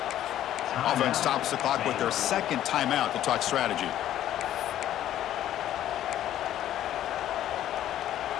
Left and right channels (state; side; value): quieter; right; 12.1 dB